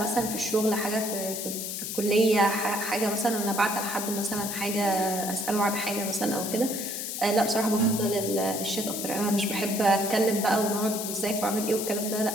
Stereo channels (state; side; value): noise; left; hiss, 5 dB below the sound